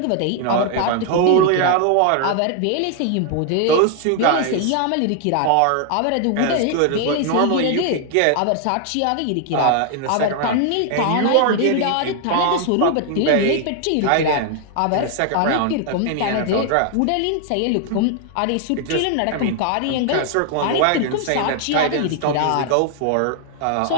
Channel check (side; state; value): both; different; correlation 0.00